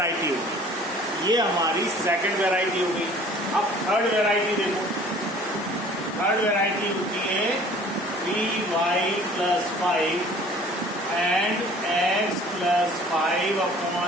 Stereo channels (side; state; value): both; normal; correlation 0.50